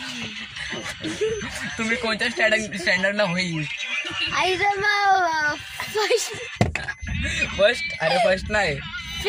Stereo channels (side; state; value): both; identical; correlation 1.00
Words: तुम्ही कोणत्या स्टँडर्डला होईल? आईचं मग फर्स्ट? अरे फर्स्ट नाही.